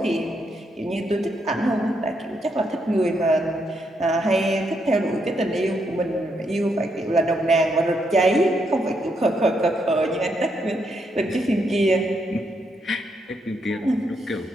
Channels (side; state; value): both; normal; correlation 0.78